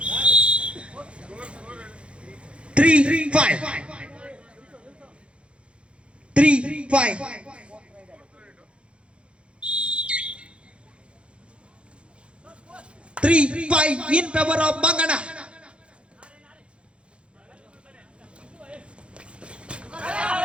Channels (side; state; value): left; late; 0.058 ms